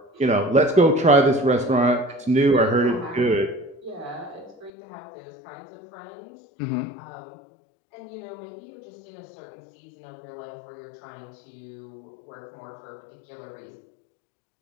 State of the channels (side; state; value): right; drops out; at 4.7 s